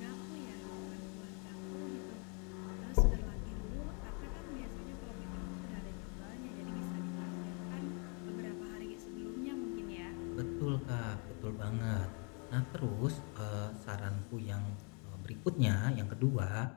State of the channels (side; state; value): right; quieter; 37.3 dB